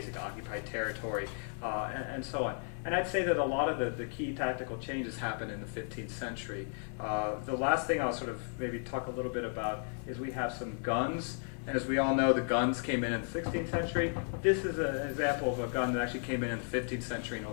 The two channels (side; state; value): right; silent; 55 dB below the other